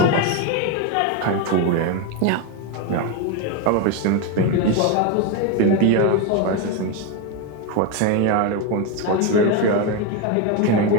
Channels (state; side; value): different; both; correlation 0.03